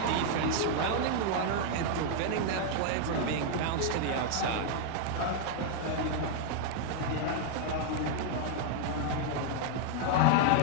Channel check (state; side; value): different; both; correlation 0.00